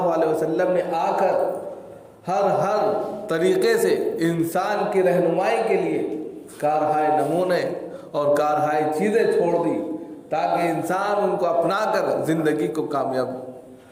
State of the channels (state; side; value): identical; both; correlation 1.00